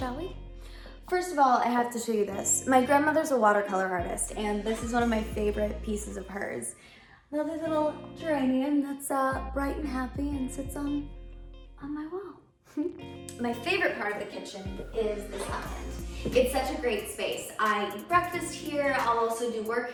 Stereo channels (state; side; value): identical; both; correlation 1.00